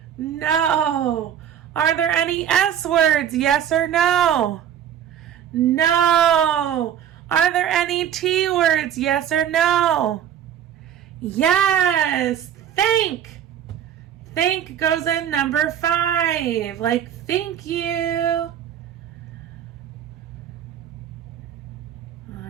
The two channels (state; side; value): quieter; left; 9.7 dB